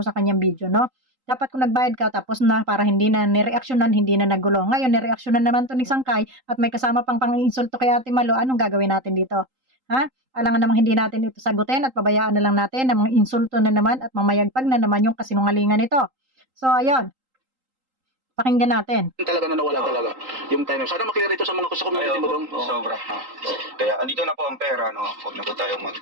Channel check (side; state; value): left; late; 3.8 ms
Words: kanyang video, no? Dapat kung nagbayad ka tapos na para hindi na nireaksyonan, hindi na nagulo. Ngayon, nireaksyonan naman to ni Sangkay at may kasama pang pang-insulto kay Ate Malo. Anong gagawin natin dito? Ha? Alangan namang hindi natin ito sagutin at pabayaan na lang natin na mga insulto na naman at mamayagpag na naman yung kasinungalingan nito. So, ayun. Pakinggan natin. Talaga na nawala talaga yung time. Sana maklear ito sa mga sa community mo dong. Sobra. No? Kaya andito na po ang pera, no? Huwag na po tayong